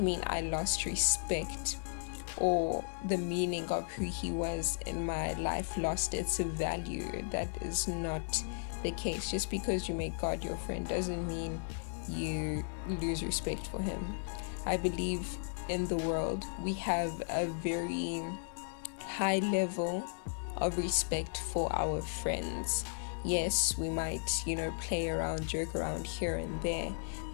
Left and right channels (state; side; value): silent; right; digital silence